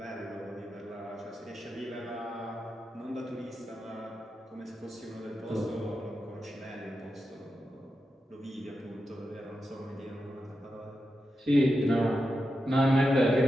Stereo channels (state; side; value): normal; both; correlation 0.89